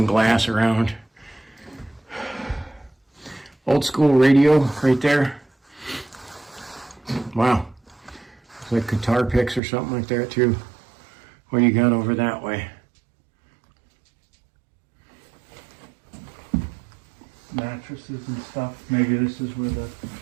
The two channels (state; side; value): drops out; left; at 9.6 s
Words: glass around. Old school radio right there. Wow. It's like guitar picks or something like that too. What do you got over that way? Mattresses and stuff. Maybe this is where the